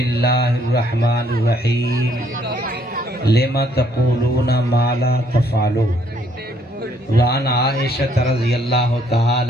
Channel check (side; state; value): both; normal; correlation 0.67